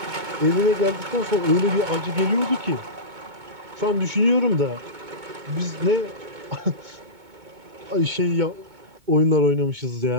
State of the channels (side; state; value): left; late; 2.2 ms